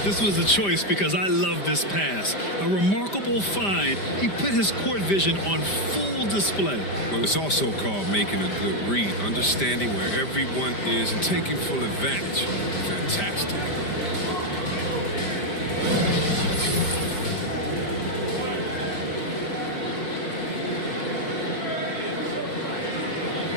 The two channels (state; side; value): late; right; 5.0 ms